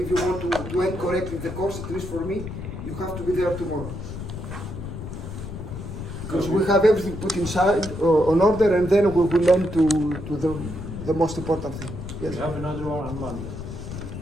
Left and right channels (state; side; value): noise; left; rumble, 8 dB below the sound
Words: you want to end correctly the course, at least for me, you have to be there tomorrow. Because we have everything put inside on order, and then we will end to the most important thing. Yes. We have another one on Monday.